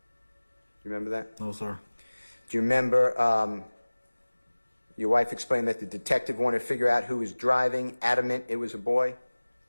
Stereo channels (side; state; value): both; inverted; correlation -1.00